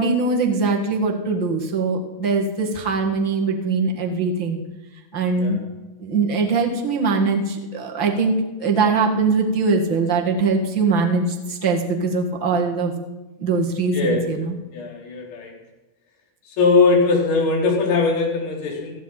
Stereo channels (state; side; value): late; right; 5.9 ms